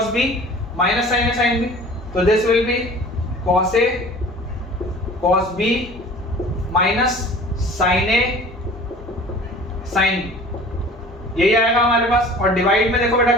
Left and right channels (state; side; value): normal; both; correlation 0.44